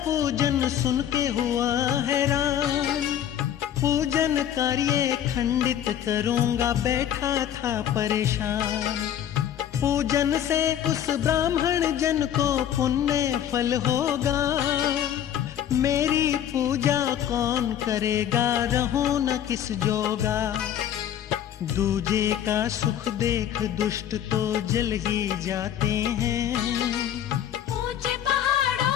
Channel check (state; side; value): quieter; right; 10.3 dB